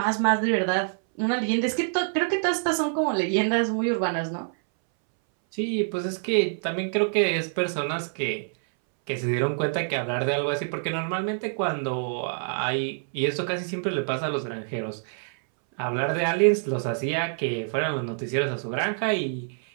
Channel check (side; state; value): left; silent; 61 dB below the other